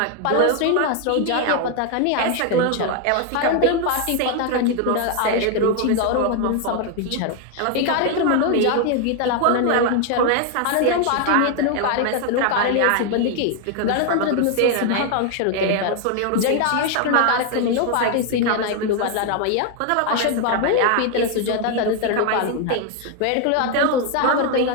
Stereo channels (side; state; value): both; different; correlation 0.01